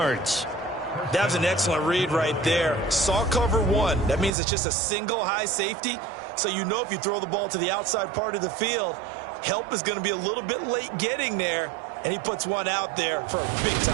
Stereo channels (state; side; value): drops out; left; at 4.3 s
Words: That was an excellent read right there. Saw cover one. That means it's just a single high safety. So you know if you throw the ball to the outside part of the field, help is going to be a little bit late getting there. And he puts one out there for a